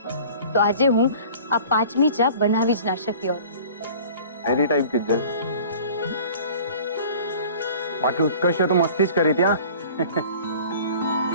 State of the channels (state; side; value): inverted; both; correlation -0.45